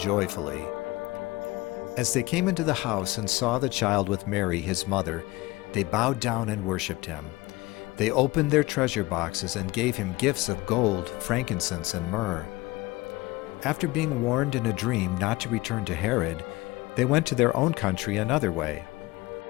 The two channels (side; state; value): right; quieter; 20.0 dB